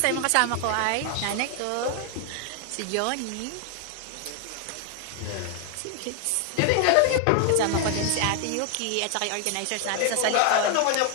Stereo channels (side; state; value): both; different; correlation 0.00